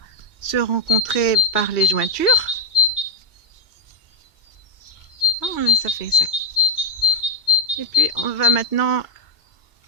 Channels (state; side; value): late; right; 2.2 ms